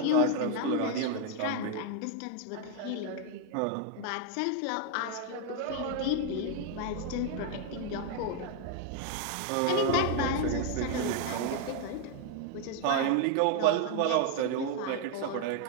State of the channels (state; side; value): different; both; correlation 0.01